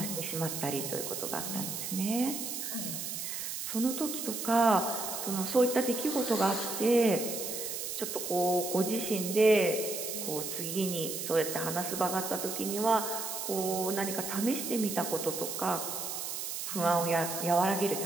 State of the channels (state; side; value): noise; right; hiss, 5 dB below the sound